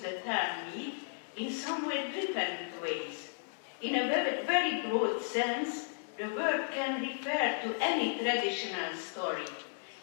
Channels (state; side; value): silent; right; digital silence